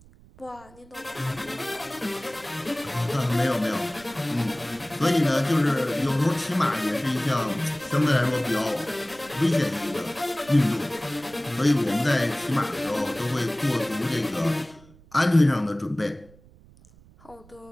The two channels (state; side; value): noise; right; rumble, 25 dB below the sound